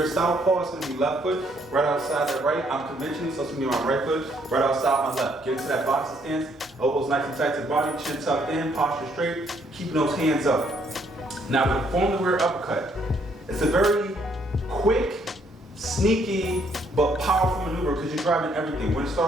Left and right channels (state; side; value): normal; both; correlation 0.69